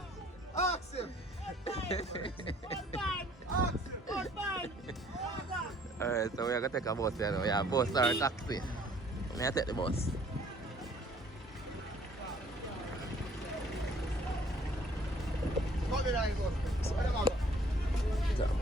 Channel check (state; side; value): normal; both; correlation 0.58